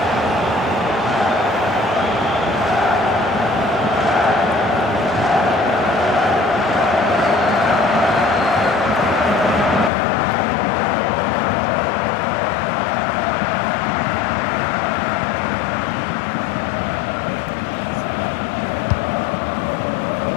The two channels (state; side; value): drops out; right; at 9.9 s